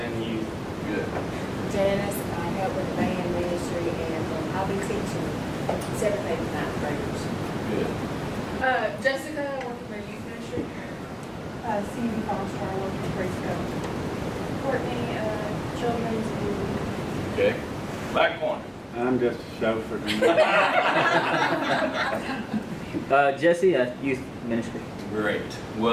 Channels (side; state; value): both; identical; correlation 1.00